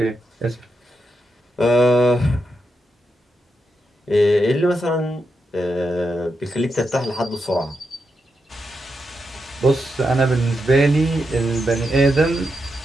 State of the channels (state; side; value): normal; both; correlation 0.85